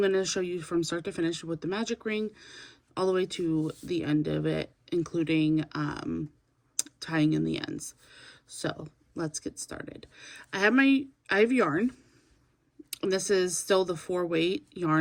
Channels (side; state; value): both; identical; correlation 1.00